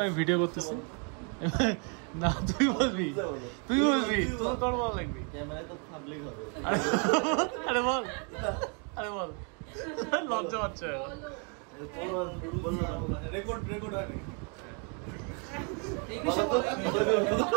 আমি ভিডিও করতেছি। না তুই বলবি, তুই বলবি, তোর বল লাগবি। ক্যামেরায় তো পাবলিক হবে। আরে বল, আরে বল, লজ্জা পাচ্ছে। তোর বললাম রেকর্ড হয় নাকি? ইংলিশে বল, ইংলিশে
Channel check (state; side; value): quieter; left; 37.1 dB